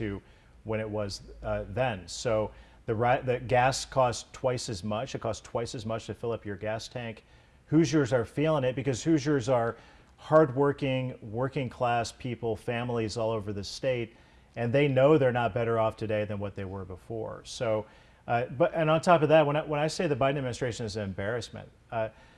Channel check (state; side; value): identical; both; correlation 1.00